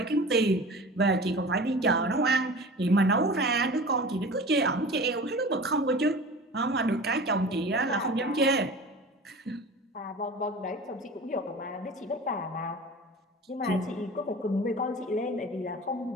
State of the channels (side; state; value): both; normal; correlation 0.37